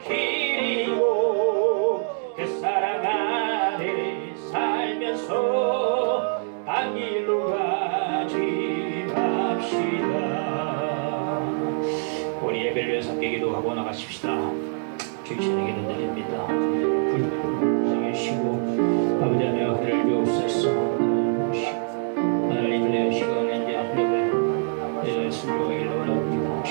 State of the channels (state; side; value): silent; left; 62 dB below the other